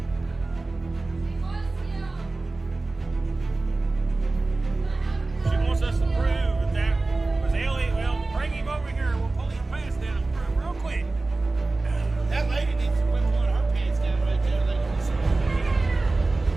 She wants us to prove that that was Ellie. Well, bring him over here. We'll pull his pants down real quick. That lady needs to quit pulling her pants down right there.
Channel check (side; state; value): left; quieter; 3.3 dB